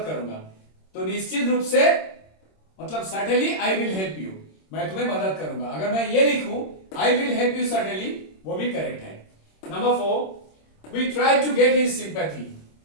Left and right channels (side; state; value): right; late; 26 ms